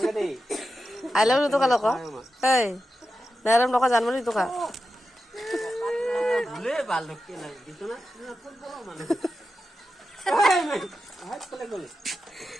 দে আই লাভ ইউ তোকা লোক এই নেরম লোক জানবলি তোকা ভুলে বাল লক্ষ্য নাই দিছো না ফুল বড় মানে হাত কলে গলে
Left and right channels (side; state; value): both; normal; correlation 0.90